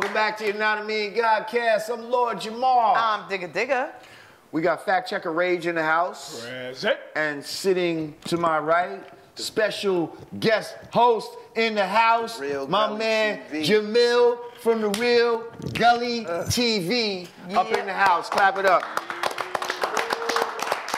back to Yanadameen Godcast. I'm Lord Jamar. I'm Digga Digga. We got fact checker Rage in the house. Present. And sitting to my right, special guest host in the house, Real my Gully man TV. Jamil from the Real Gully TV up in the house. Clap it up.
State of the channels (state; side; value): identical; both; correlation 1.00